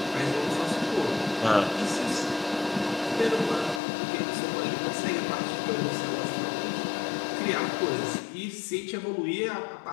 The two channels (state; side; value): drops out; right; at 3.8 s